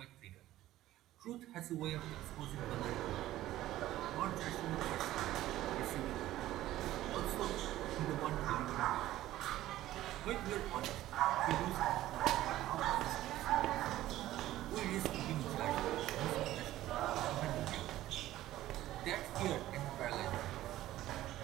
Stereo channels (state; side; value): quieter; left; 14.7 dB